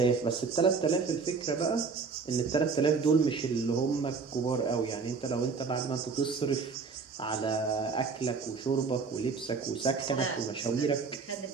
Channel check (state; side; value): quieter; left; 4.9 dB